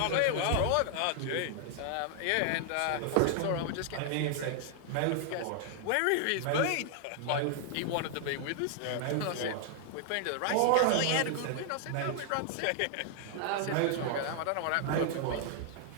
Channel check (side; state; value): both; different; correlation 0.00